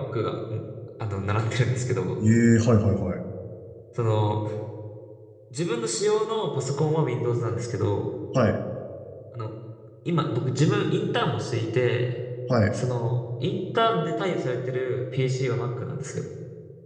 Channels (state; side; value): identical; both; correlation 1.00